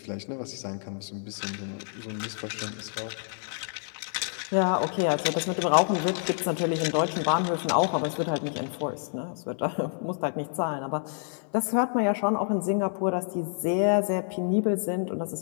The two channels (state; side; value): silent; right; digital silence